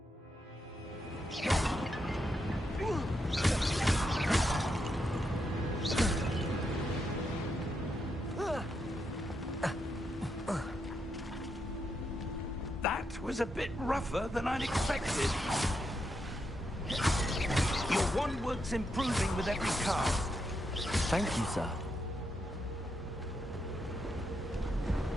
That was a bit rougher than I'd expected. Your wand work's improving with every cast. Thank you, sir.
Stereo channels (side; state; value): both; normal; correlation 0.82